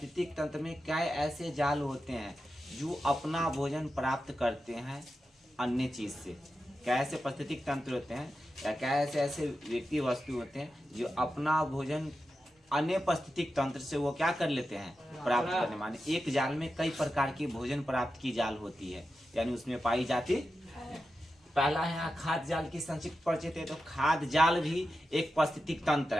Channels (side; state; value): both; normal; correlation 0.91